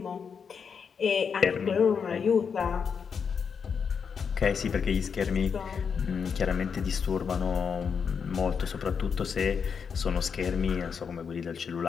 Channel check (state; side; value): quieter; right; 6.4 dB